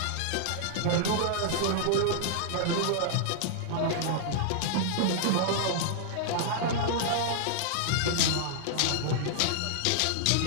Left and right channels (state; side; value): different; both; correlation -0.01